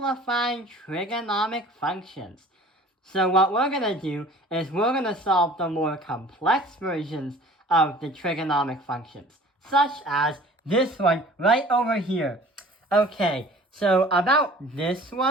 trigonomic functions. So what we're going to do is we're going to solve the more complex versions of the trigonomic functions, such as this one right over here. Okay, so about this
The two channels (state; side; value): normal; both; correlation 0.47